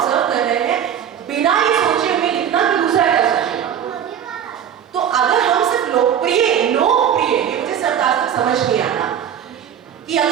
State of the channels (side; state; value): left; quieter; 9.1 dB